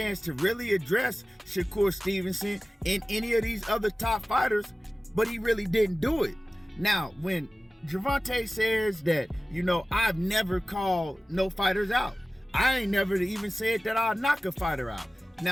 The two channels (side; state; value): both; normal; correlation 0.97